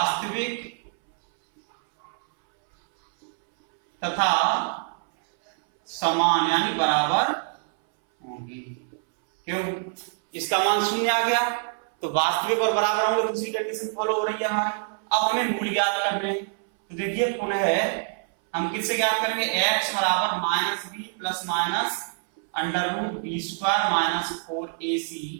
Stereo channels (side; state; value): left; silent; 61 dB below the other